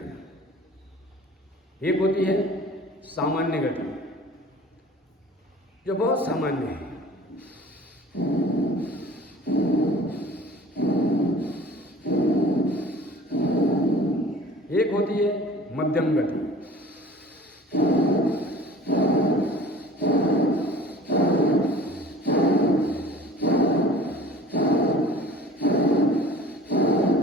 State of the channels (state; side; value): normal; both; correlation 0.45